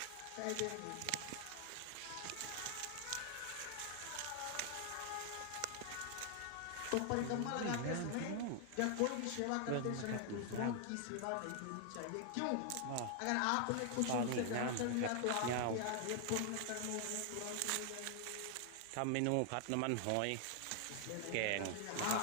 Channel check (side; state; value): both; different; correlation 0.00